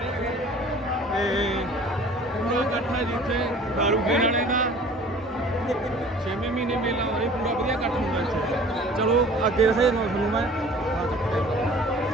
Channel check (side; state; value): both; normal; correlation 0.48